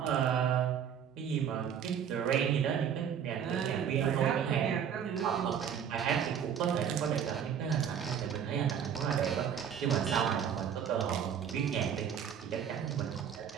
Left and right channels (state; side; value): quieter; left; 8.3 dB